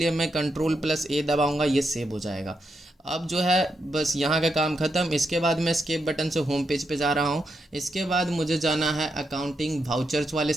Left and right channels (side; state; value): both; normal; correlation 0.83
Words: मैं Ctrl+A दबाऊंगा, ये सेव हो जाएगा। अब जो है बस यहाँ का काम ख़त्म। इसके बाद मैं एस्केप बटन से होम पेज पे जा रहा हूँ। इसके बाद मुझे जाना है अकाउंटिंग वाउचर्स वाले